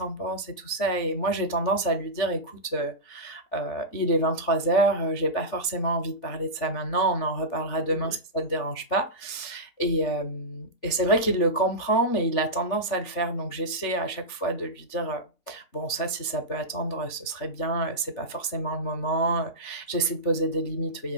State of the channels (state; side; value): late; right; 3.5 ms